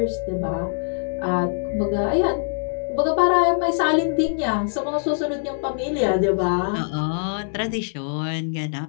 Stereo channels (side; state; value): right; silent; 62 dB below the other